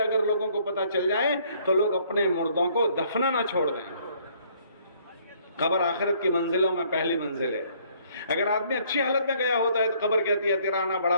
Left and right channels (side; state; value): both; inverted; correlation -0.63